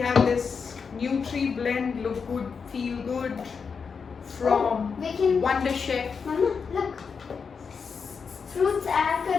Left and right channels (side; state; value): right; quieter; 5.7 dB